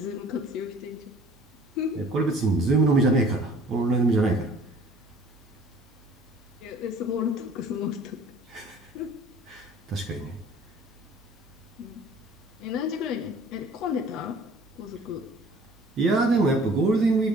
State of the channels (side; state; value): both; normal; correlation 0.51